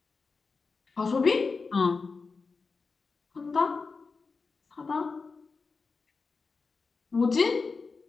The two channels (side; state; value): right; quieter; 4.5 dB